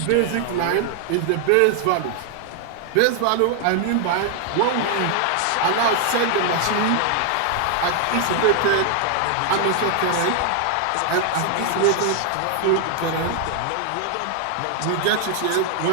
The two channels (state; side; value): different; both; correlation 0.00